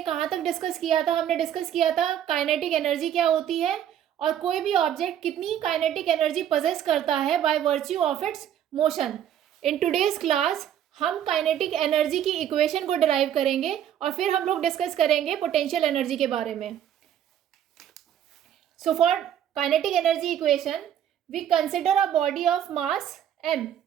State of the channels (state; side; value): quieter; left; 10.2 dB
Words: कहाँ तक डिस्कस किया था? हमने डिस्कस किया था काइनेटिक एनर्जी क्या होती है और कोई भी ऑब्जेक्ट कितनी काइनेटिक एनर्जी पोजेस करता है by virtue of its motion. In today's class हम काइनेटिक एनर्जी की इक्वेशन को डिराइव करेंगे और फिर हम लोग डिस्कस करेंगे पोटेंशियल एनर्जी के बारे में। So for kinetic energy equation we consider a body of mass m